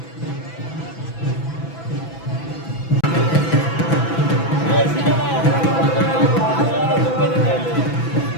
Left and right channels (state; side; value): late; right; 6.0 ms